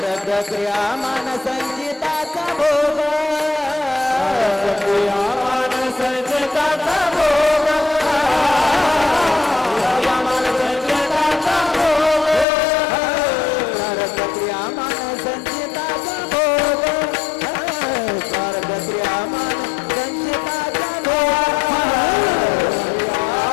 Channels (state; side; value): drops out; right; at 12.5 s